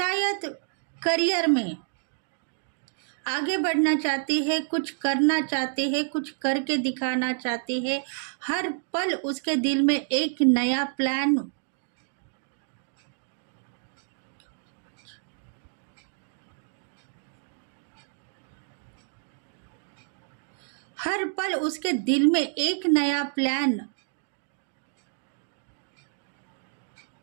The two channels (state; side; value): silent; left; digital silence